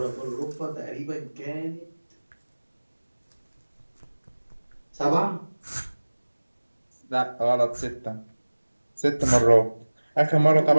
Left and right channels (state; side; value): inverted; both; correlation -1.00